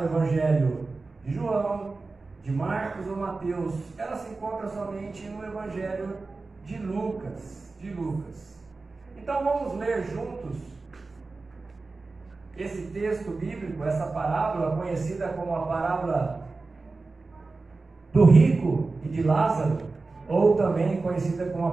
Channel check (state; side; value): quieter; left; 3.7 dB